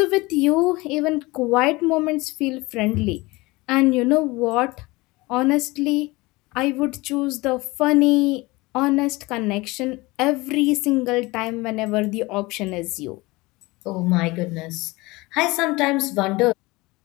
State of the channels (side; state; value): right; quieter; 22.4 dB